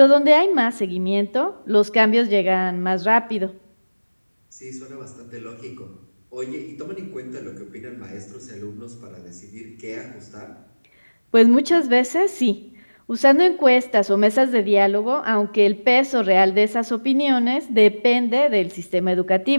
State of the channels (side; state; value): both; inverted; correlation -1.00